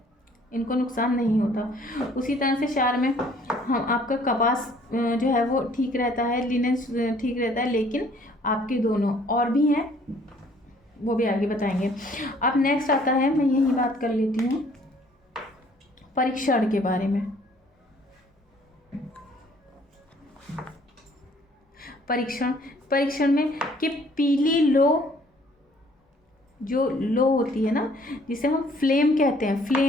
इनको नुकसान नहीं होता। उसी तरह से क्षार में हम आपका कपास जो है वो ठीक रहता है, लिनन ठीक रहता है, लेकिन आपके दोनों और भी हैं, वो भी आगे बताएंगे। अब नेक्स्ट आता है, मैं यही बात कर लेती हूँ परीक्षण के बारे में। परीक्षण में कि पीली लो जो लो होती है ना, जिसे हम फ्लेम कहते हैं,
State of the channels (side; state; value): both; normal; correlation 0.59